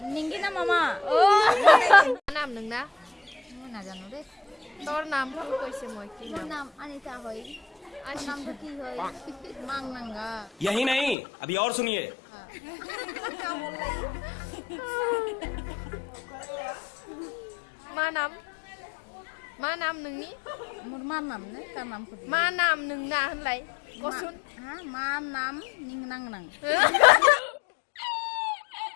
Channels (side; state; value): right; drops out; at 11.2 s